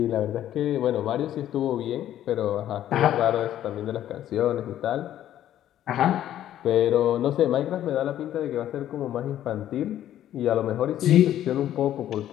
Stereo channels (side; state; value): right; quieter; 11.9 dB